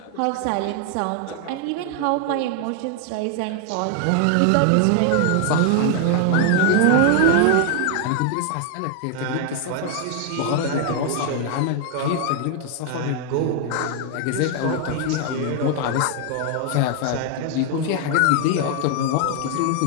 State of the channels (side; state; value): both; different; correlation 0.00